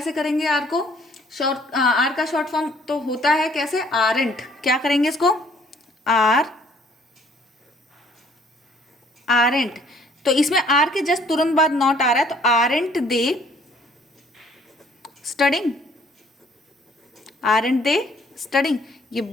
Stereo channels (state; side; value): normal; both; correlation 0.60